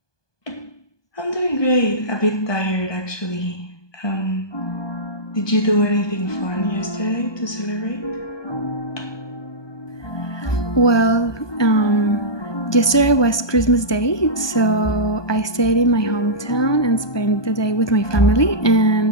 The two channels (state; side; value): late; right; 1.2 ms